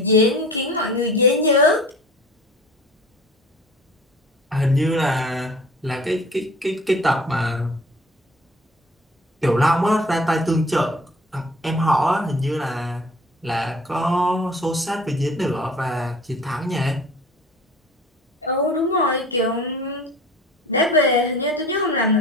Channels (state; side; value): normal; both; correlation 0.45